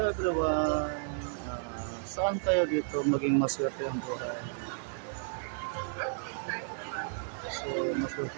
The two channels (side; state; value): left; silent; digital silence